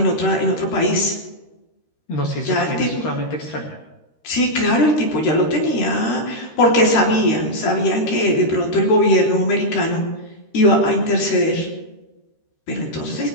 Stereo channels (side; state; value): right; late; 13 ms